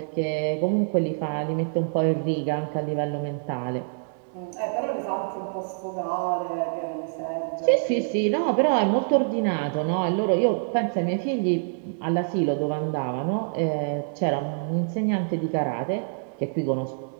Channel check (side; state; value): left; silent; digital silence